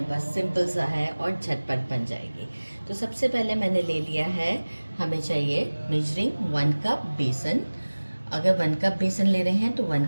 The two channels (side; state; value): both; inverted; correlation -1.00